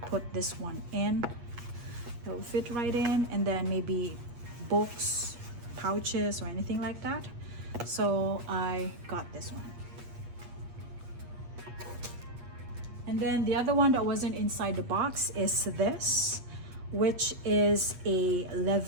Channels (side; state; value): left; late; 8.4 ms